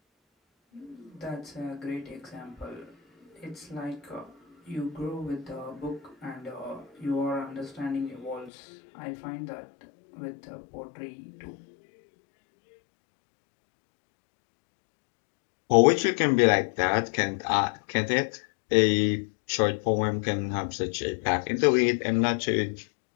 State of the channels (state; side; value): drops out; right; at 8.5 s